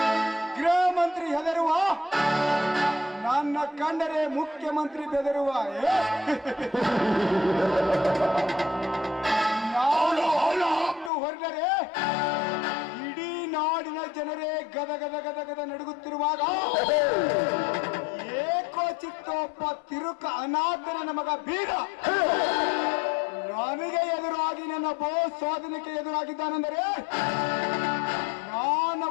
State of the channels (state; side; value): drops out; right; at 11.1 s